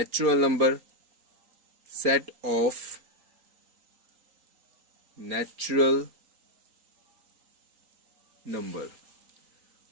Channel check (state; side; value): late; left; 3.9 ms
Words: number, set of natural number.